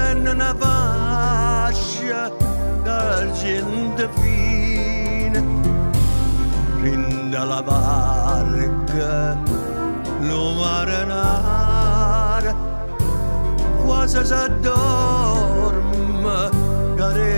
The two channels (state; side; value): inverted; both; correlation -1.00